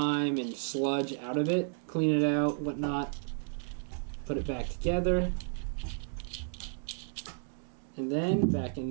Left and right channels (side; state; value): left; silent; digital silence